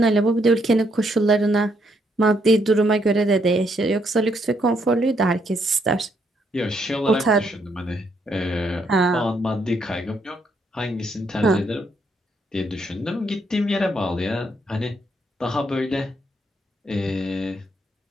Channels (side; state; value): both; normal; correlation 0.74